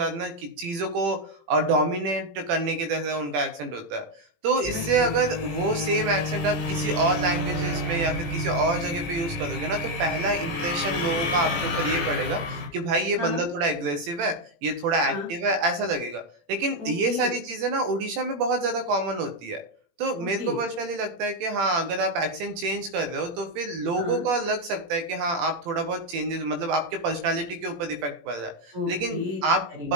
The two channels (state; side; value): late; left; 18 ms